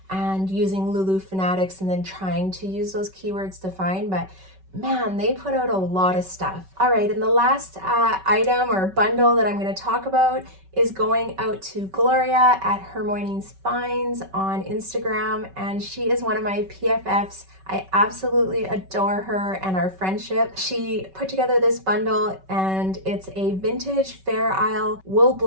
and using Lulu Fanatics and then trying to use those keywords to find, but man, they put out a lot of stuff. All right, and the last item or bundle that I'm going to talk about is going out to Gloria at Her Mornings Finds on Instagram, and she is one of my PFFs. I absolutely adore her and our friendship. She put together this bundle, and it's a vintage Fair Isle wool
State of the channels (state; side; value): late; left; 5.3 ms